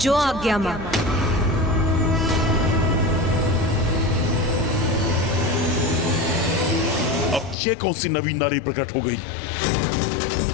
आज्ञा मां। अब ये कौन सी नवीन नारी प्रकट हो गई?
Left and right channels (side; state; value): right; drops out; at 7.6 s